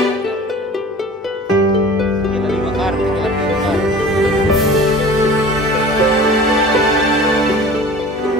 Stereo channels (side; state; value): both; normal; correlation 0.42